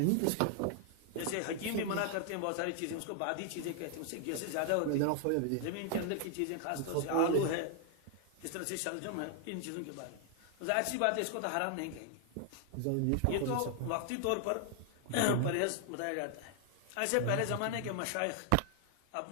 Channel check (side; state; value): both; different; correlation 0.00